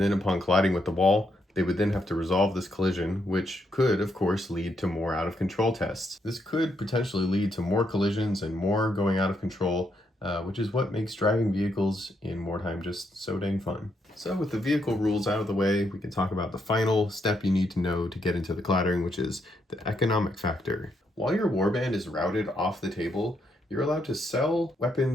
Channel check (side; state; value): both; normal; correlation 0.78